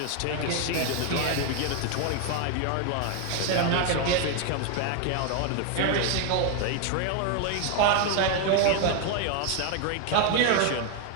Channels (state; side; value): different; both; correlation 0.01